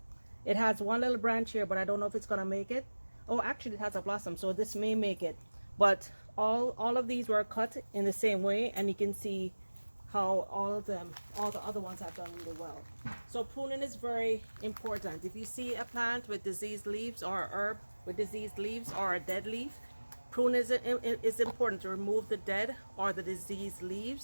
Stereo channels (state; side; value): inverted; both; correlation -1.00